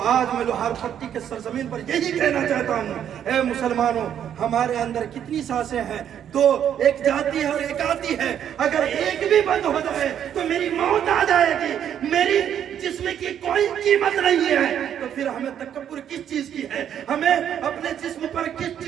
आज मैं लोहार पट्टी के सरजमीन पर यही कहना चाहता हूँ, ऐ मुसलमानों, हमारे अंदर कितनी सांसें हैं? 2, एक जाती है और एक आती है। अगर एक भी बंद हो जाए तो मेरी मौत आ जाएगी, मेरी जिस्म की कोई कीमत नहीं है। तो फिर हमें तकब्बुर किस चीज की है? हमें अपने जिस्म पर किस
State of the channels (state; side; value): quieter; left; 9.5 dB